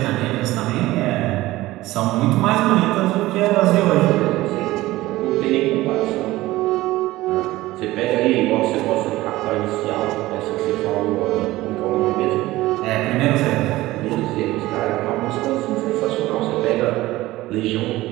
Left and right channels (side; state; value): left; quieter; 17.6 dB